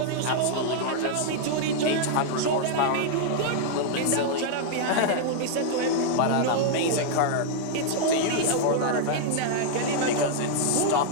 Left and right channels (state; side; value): different; both; correlation -0.01